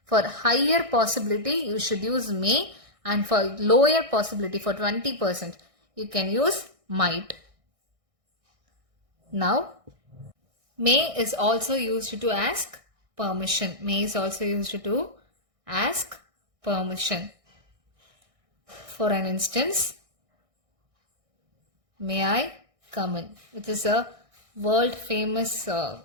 For higher possibility, you should use may, and for lower possibility, for 20%, you can use might. Now, may is also used to ask permission. May is also used to ask permission. For an instance, may I come in? Which is a world famous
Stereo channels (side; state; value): left; late; 1.6 ms